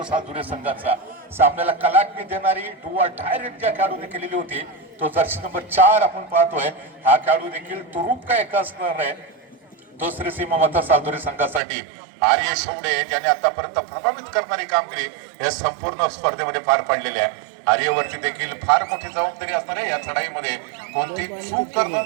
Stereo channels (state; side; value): drops out; left; at 11.6 s